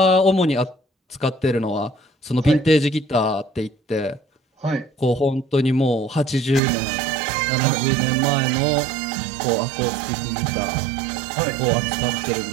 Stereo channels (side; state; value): left; drops out; at 6.6 s